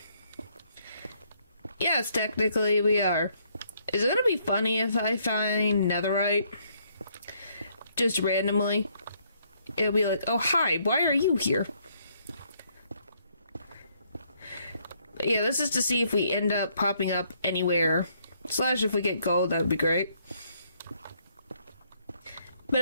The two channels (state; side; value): inverted; both; correlation -0.69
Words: Yes, technically we are. Is it gonna be funny if I find netherite? Just randomly? It'll be like, oh hi, why are you here? But yeah, this is to see if we end up popping up anywhere. Slash if we get gold, that'd be great. But